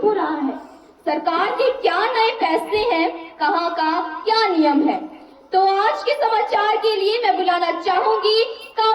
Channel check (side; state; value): both; identical; correlation 1.00